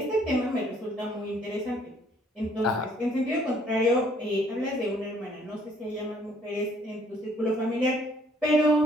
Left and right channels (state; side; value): normal; both; correlation 0.62